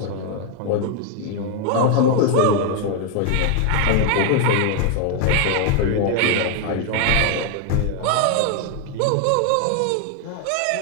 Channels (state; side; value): different; both; correlation 0.01